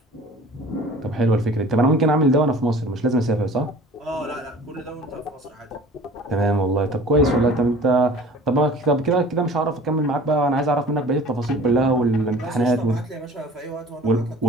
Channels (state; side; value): normal; both; correlation 0.45